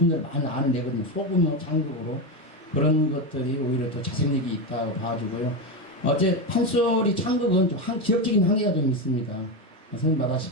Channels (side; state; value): both; normal; correlation 0.14